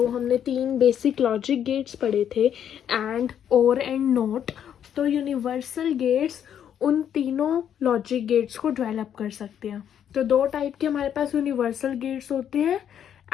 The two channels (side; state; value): right; quieter; 9.3 dB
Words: हमने 3 बेसिक लॉजिक गेट्स पढ़े थे, एंड, और एंड नॉट। तो यूनिवर्सल गेट्स उन तीनों लॉजिक गेट्स को डेवलप कर सकते हैं। तो 2 टाइप के हमारे पास यूनिवर्सल गेट्स होते हैं,